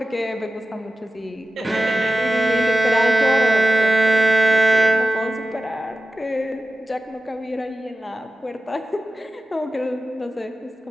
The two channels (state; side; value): normal; both; correlation 0.94